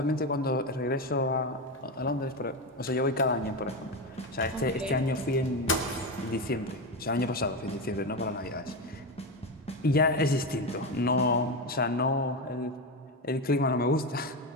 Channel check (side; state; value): both; normal; correlation 0.15